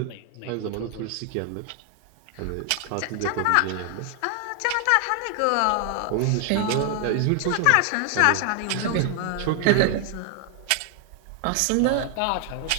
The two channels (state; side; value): different; both; correlation 0.00